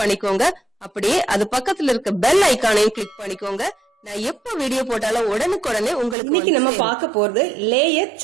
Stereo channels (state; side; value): drops out; left; at 6.2 s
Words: பண்ணிக்கோங்க. அப்படியே அது பக்கத்துல இருக்க பெல் ஐகானையும் கிளிக் பண்ணிக்கோங்க. நான் எப்ப வீடியோ போட்டாலும் உடனுக்குடனே உங்களுக்கு. இன்னைக்கு நம்ம பார்க்க போறது லேயர்